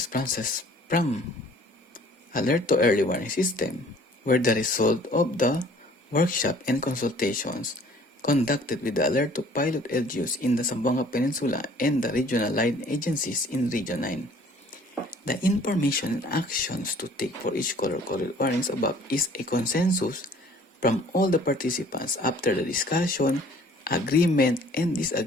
from ALeRTO early warning system were the result of the workshop and consultations conducted with the ALeRTO pilot LGUs in the Zamboanga Peninsula and the regional line agencies in Region 9. The information and actions to take for each color-coded warnings above is a consensus from all the participants after the discussion, agreement, and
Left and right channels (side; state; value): both; normal; correlation 0.54